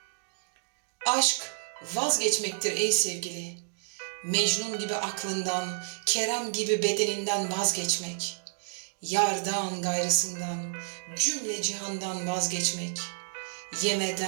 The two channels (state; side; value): silent; left; digital silence